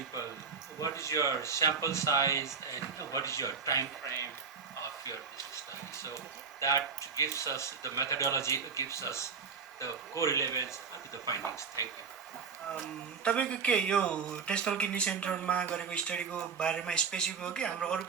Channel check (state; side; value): quieter; left; 5.6 dB